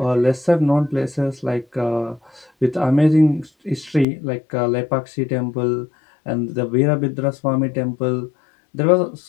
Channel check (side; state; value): right; drops out; at 4.0 s